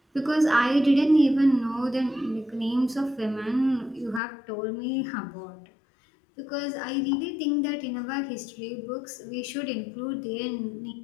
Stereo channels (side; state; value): right; drops out; at 4.2 s